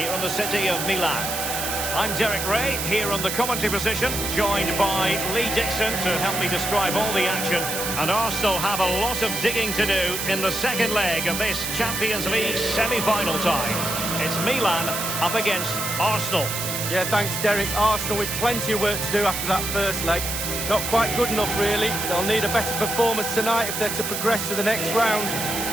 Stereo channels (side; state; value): right; noise; hiss, 3 dB below the sound